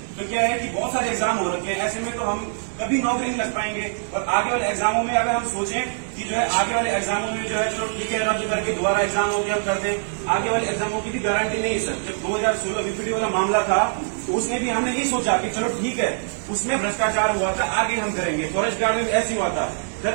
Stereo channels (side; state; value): left; silent; digital silence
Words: तो क्या है कि बहुत सारे एग्जाम हो रखे हैं, ऐसे में तो हम कभी नौकरी नहीं लग पाएंगे। और आगे वाले एग्जामों में अगर हम सोचें कि जो है आगे वाले एग्जामों में जो है चलो ठीक है रद्द करके दोबारा एग्जाम हो गया हम कर दें, आगे वाले एग्जामों की भी गारंटी नहीं है सर। जब 2016 बीपीडी वाला मामला था तो उसमें भी हमने यही सोचा कि चलो ठीक है, उसमें भ्रष्टाचार हुआ था, आगे हम करेंगे। फॉरेस्ट गार्ड में ऐसे हुआ था सर।